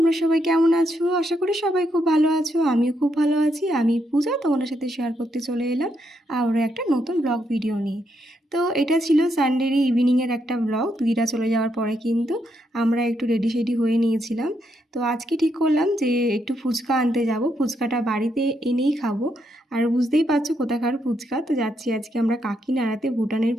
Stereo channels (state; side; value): normal; both; correlation 0.79